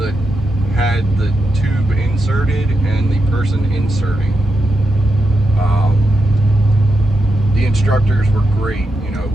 had the tube inserted and the person inserting. The instructors were great.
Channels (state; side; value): normal; both; correlation 0.86